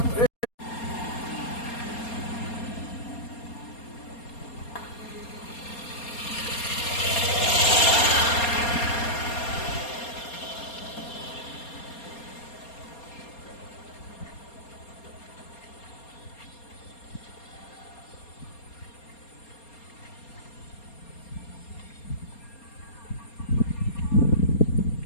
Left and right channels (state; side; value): late; right; 4.3 ms